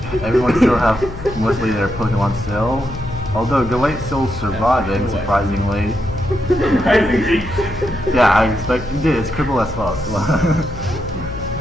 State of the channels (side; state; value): left; noise; hum, 12 dB below the sound